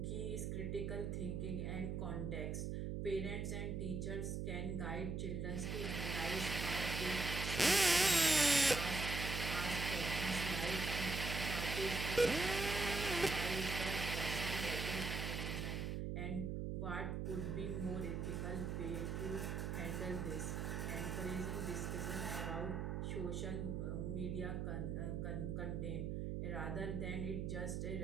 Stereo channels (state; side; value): noise; right; hum, 1 dB below the sound